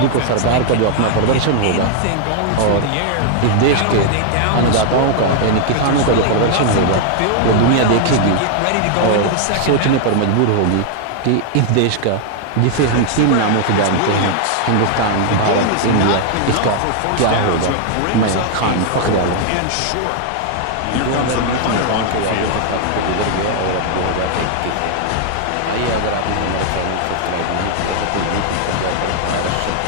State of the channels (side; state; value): both; different; correlation 0.00